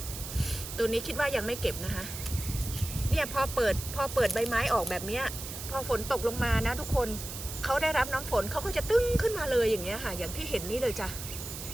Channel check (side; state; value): right; noise; hiss, 9 dB below the sound